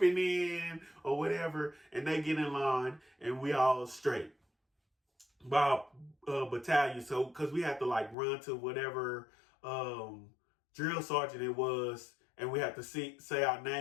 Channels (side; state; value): right; drops out; at 8.2 s